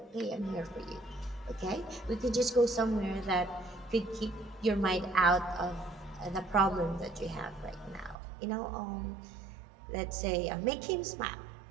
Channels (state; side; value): drops out; left; at 8.2 s